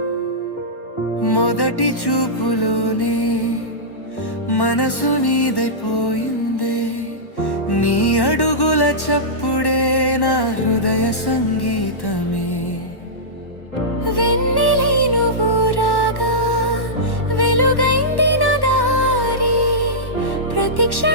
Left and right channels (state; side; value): late; right; 1.1 ms